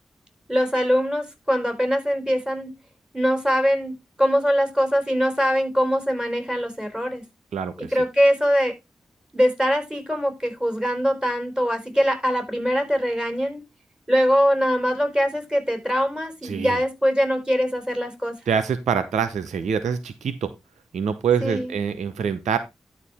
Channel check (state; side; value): normal; both; correlation 0.91